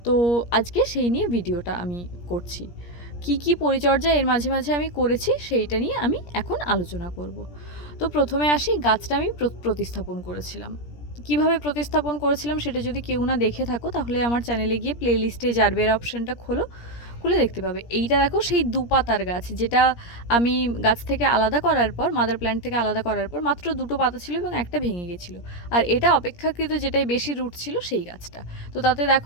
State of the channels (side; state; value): right; late; 17 ms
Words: তো আজকে সেই নিয়ে ভিডিওটা আমি করছি। কি পরিচর্যা এর মাঝে মাঝে আমি করেছি সেইটা নিয়ে আমি এখন আলোচনা করব। তো প্রথমে আসি, গাছটা আমি প্রতিস্থাপন করেছিলাম। কিভাবে প্রতিস্থাপন করেছিলাম সেটা যদি কেউ না দেখে থাকো তাহলে আমার চ্যানেলে গিয়ে প্লে লিস্টে জারবেরা অপশানটা খুলে দেখতে পাবে। এইটা দেখো সেই দুপাতার গাছ, যেটা আমি গাছ থেকে আলাদা করার পর, মাদার প্ল্যান্ট থেকে আলাদা করার পর মাত্র দুটো পাতা ছিল এবং একটা ভেঙে গেছিলো। আর এটা অপেক্ষাকৃত যেটাই বেশি রুট ছিল সেই গাছটা। তো তাতে